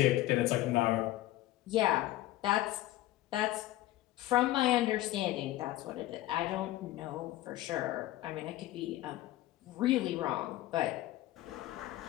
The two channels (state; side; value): quieter; right; 15.7 dB